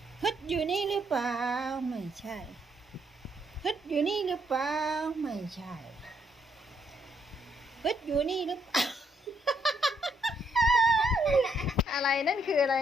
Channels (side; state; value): both; normal; correlation 0.73